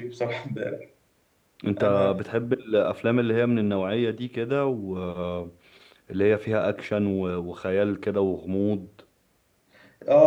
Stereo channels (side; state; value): both; identical; correlation 1.00